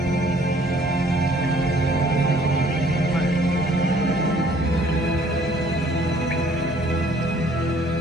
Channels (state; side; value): normal; both; correlation 0.59